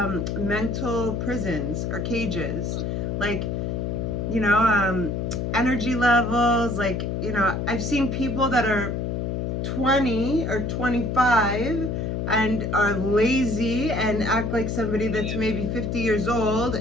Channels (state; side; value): noise; left; hum, 1 dB below the sound